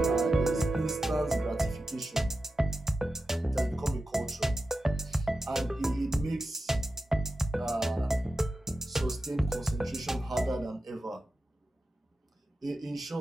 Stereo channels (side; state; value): both; normal; correlation 0.91